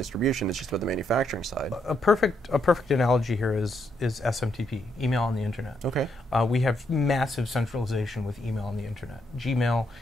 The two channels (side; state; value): both; normal; correlation 0.77